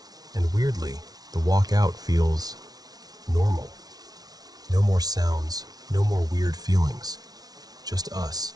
And weirdly, the walk out feels normal. No more sounds, no more weird feelings. Just us,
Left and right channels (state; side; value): late; left; 0.19 ms